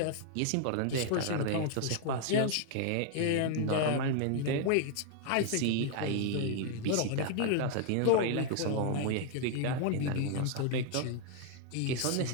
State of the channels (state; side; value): different; both; correlation 0.00